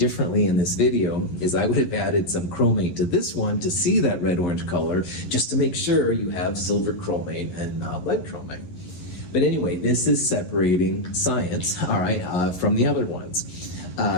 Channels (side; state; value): right; late; 11 ms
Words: in this video is I would have added some chromate to this one to see that red-orange color, just to make sure you have silver chromate and lead chromate. But anyway, this is separating science, all right, from the other ones.